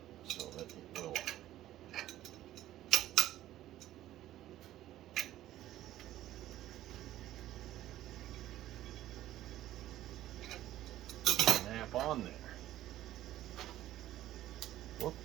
so that it will snap on there. Whoop.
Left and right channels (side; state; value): left; quieter; 13.8 dB